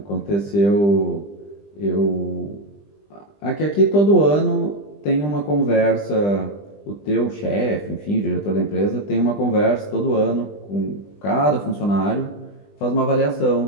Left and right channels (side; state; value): right; late; 20 ms